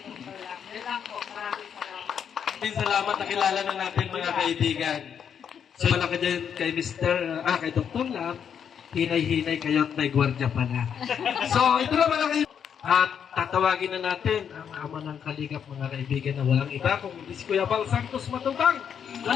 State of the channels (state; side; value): quieter; right; 7.9 dB